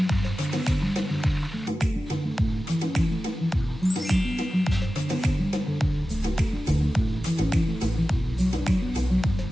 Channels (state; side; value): normal; both; correlation 0.94